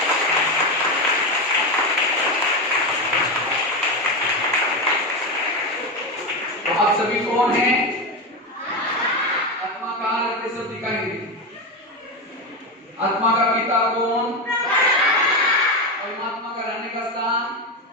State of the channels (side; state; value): both; normal; correlation 0.15